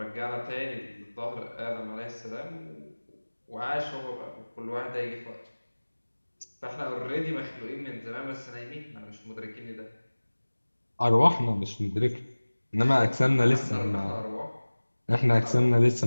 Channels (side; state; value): both; inverted; correlation -1.00